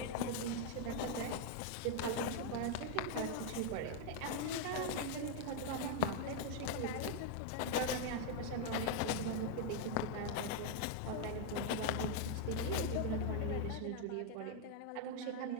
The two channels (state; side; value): different; both; correlation 0.00